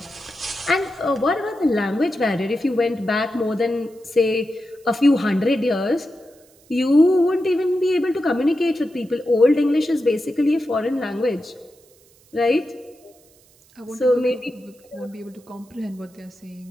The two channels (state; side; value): noise; right; hiss, 30 dB below the sound